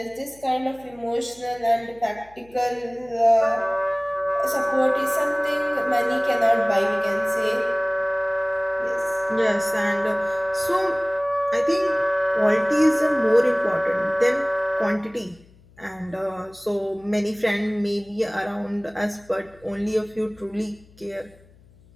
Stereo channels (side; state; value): left; noise; hum, 27 dB below the sound